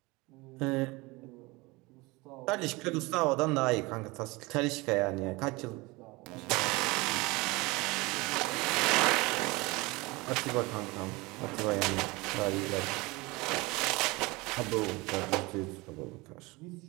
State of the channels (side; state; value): left; quieter; 23.7 dB